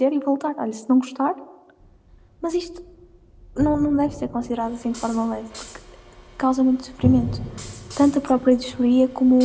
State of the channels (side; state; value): both; identical; correlation 1.00